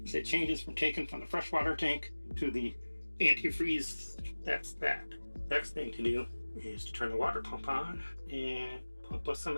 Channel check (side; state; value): both; inverted; correlation -1.00